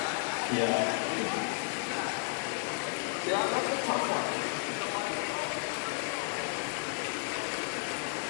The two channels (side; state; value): right; silent; 56 dB below the other